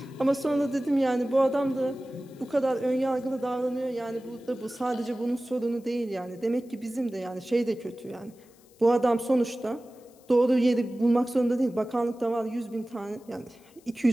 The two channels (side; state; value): left; noise; hiss, 29 dB below the sound